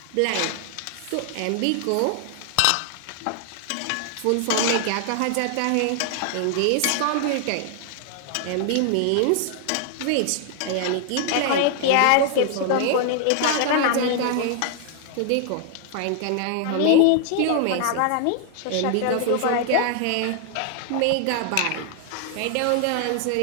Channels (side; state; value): both; different; correlation 0.00